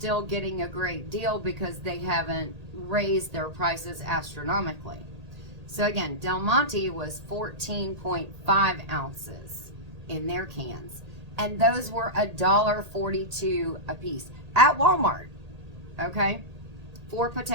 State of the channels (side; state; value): left; late; 1.8 ms